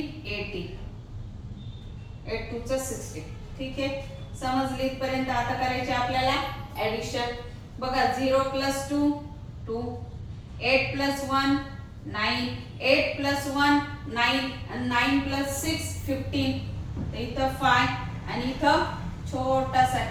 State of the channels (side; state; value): both; identical; correlation 1.00